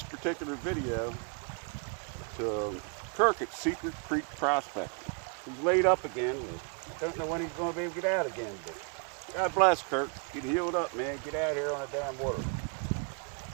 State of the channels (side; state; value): left; quieter; 38.7 dB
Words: particular video to Kirk at Secret Creek Prospecting. He's laid up again. I don't know when he's going to be able to get out again, but God bless Kirk. Get healed up, man. Get out here on the damn water.